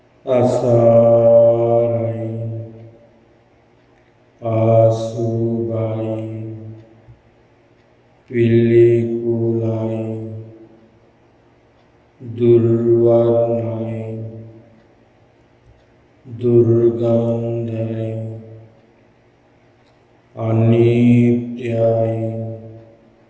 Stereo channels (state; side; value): identical; both; correlation 1.00